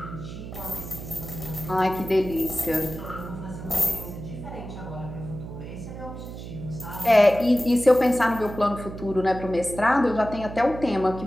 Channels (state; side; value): noise; right; hum, 10 dB below the sound